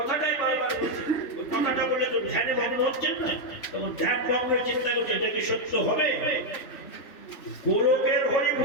বারবার বলছে। ওই কথাটা বলে তো ধ্যানে ভগ্ন হচ্ছেন না, তখন ধ্যান ভগ্নের চিন্তা করছে এটা কি সত্য হবে? গোলকের হরি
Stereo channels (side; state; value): right; late; 3.5 ms